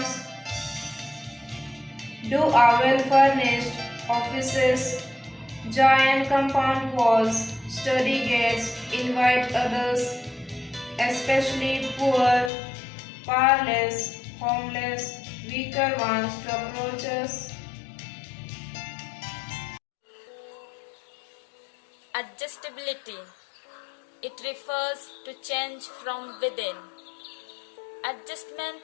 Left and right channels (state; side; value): drops out; right; at 12.5 s